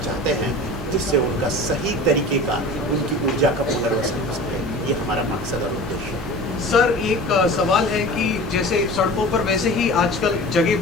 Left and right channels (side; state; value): both; normal; correlation 0.37